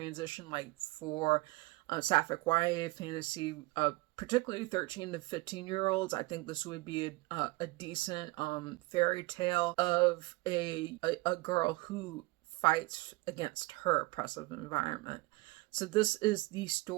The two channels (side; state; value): left; quieter; 22.1 dB